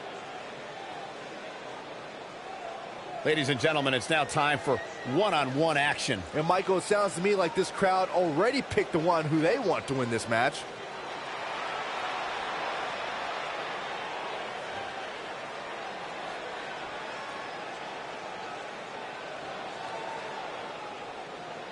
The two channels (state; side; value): identical; both; correlation 1.00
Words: Ladies and gentlemen, it's now time for one-on-one action. And Michael, it sounds to me like this crowd already picked the one who they want to win this match.